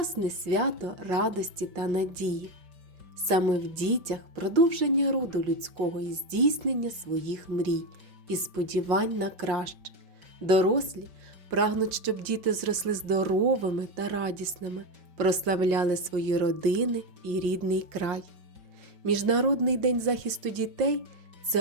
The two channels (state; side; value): late; left; 5.6 ms